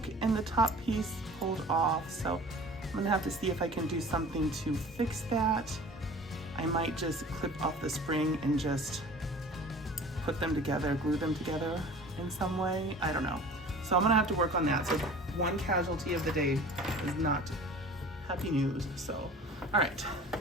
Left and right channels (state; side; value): normal; both; correlation 0.43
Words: and the top piece pulled off, so I'm gonna have to see if I can do something to fix that. I might just clip off the spring and just put them together, glue them together in some way. I don't know. So I'm gonna have to work on that. So one casualty of the day is not happy news. So, all right.